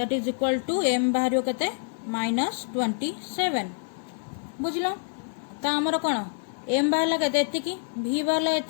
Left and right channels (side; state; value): right; silent; digital silence